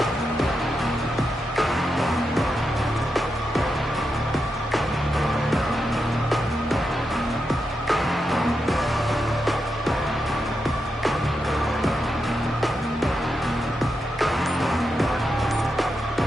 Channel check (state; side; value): normal; both; correlation 0.86